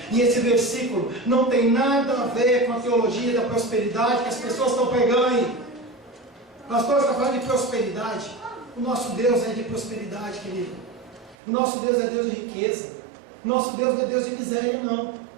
E esse versículo não tem nada a ver com a teologia da prosperidade que as pessoas estão pregando aí. O pastor está falando de prosperidade. O nosso Deus é de prosperidade, querido. O nosso Deus é Deus de riqueza. O nosso Deus não é Deus de miséria, não.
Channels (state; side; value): drops out; left; at 11.4 s